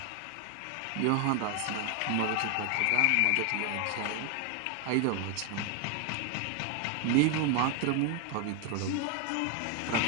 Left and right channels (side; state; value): both; different; correlation 0.01